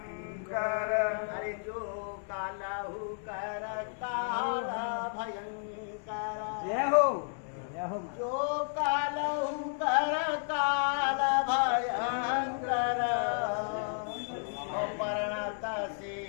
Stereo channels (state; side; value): silent; right; digital silence